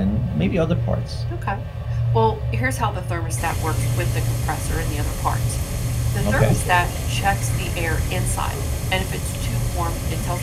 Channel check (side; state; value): both; identical; correlation 1.00